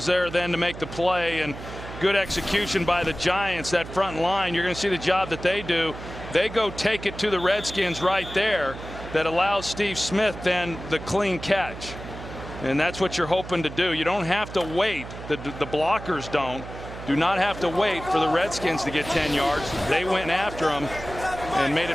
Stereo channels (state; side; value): noise; right; hum, 12 dB below the sound